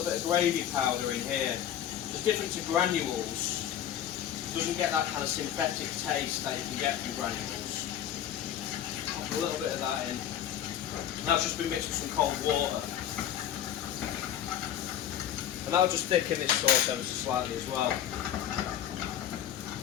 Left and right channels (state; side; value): quieter; right; 10.5 dB